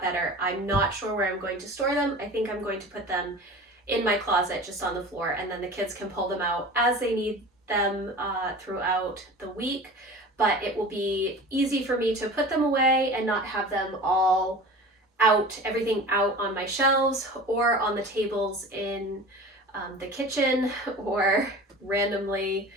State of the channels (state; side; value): normal; both; correlation 0.37